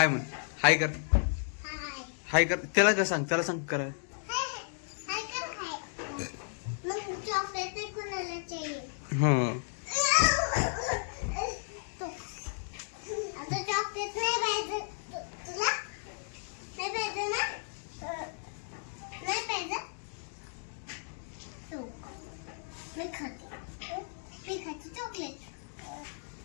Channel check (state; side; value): silent; right; digital silence